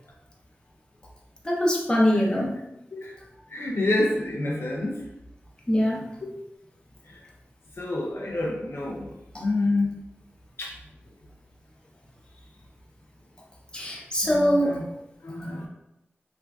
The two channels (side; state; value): both; normal; correlation 0.90